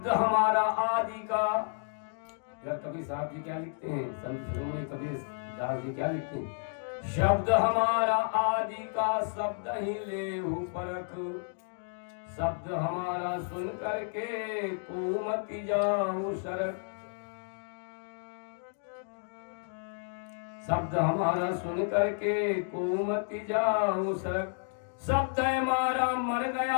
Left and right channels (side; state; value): right; silent; digital silence